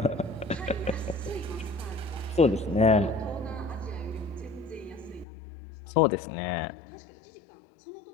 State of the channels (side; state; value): right; drops out; at 5.2 s